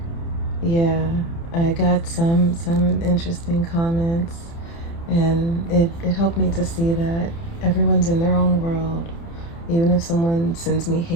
yeah, I got some interesting comments, and it helped me to see that everyone's in their own world. Even if someone sends me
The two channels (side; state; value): right; late; 30 ms